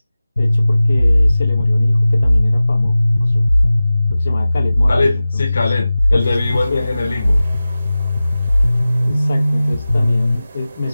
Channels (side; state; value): both; inverted; correlation -0.96